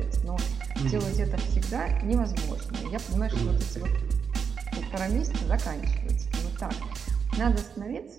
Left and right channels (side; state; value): left; quieter; 6.5 dB